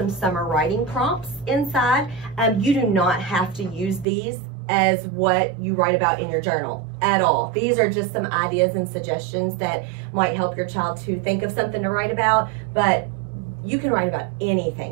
summer writing prompts inside. You do not have to use these as what you write about in your journal at all. These are just some ideas and suggestions that might help your child to think of something to write about, but you can write about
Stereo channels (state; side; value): drops out; left; at 4.0 s